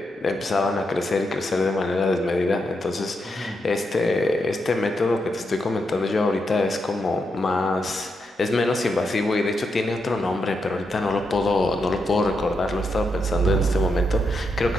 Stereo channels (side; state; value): both; normal; correlation 0.83